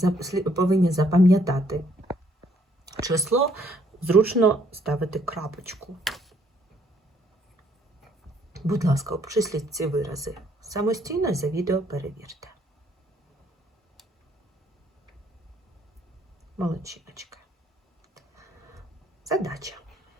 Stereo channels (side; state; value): both; normal; correlation 0.66